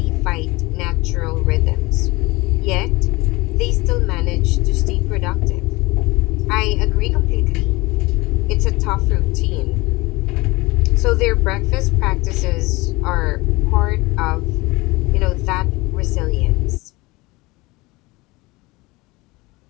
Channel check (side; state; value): right; quieter; 22.4 dB